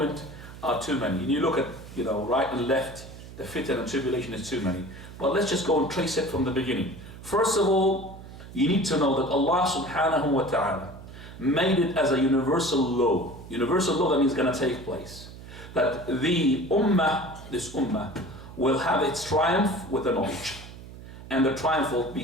are too many. And you look at, right and left, the fitan and tribulation is too many. But let's just go and trace it from the beginning. First of all, you need to know that Allah subhanahu wa ta'ala made it as a universal law. Universal law, that means going to take place. That the ummah, this ummah, will have its triumph with the knowledge. And the triumph will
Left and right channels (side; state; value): right; noise; hum, 15 dB below the sound